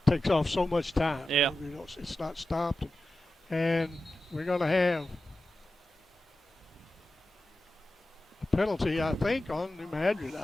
takes off so much time. Yeah. You know, it's not stopped. And we're going to have a penalty, I think, on New Madrid.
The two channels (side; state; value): both; normal; correlation 0.93